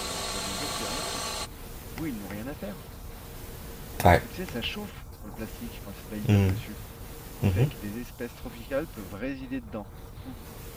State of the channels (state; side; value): identical; both; correlation 1.00